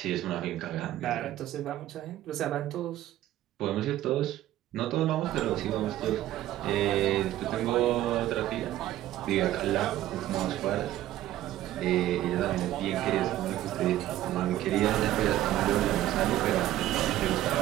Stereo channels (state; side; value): quieter; left; 13.9 dB